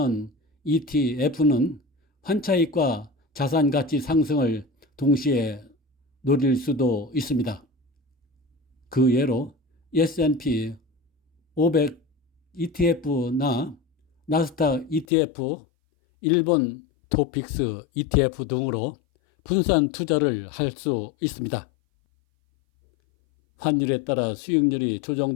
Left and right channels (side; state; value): right; drops out; at 15.1 s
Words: ETF는 환차익과 자산 가치 상승을 동시에 노릴 수도 있습니다. 그 예로 S&P 500 ETF나 나스닥 ETF, 일본 토픽스 ETF 등으로 분산 투자를 할 수 있습니다. 환율에 따라 수익률이